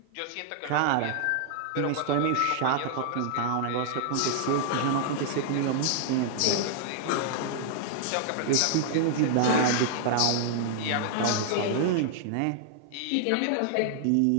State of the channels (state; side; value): different; both; correlation -0.01